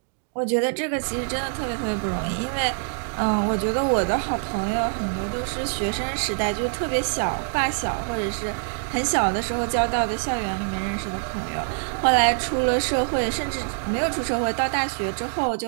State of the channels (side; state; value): left; silent; 62 dB below the other